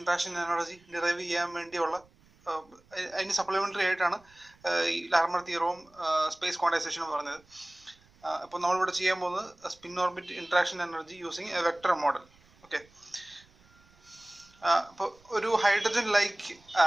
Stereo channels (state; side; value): noise; right; rumble, 30 dB below the sound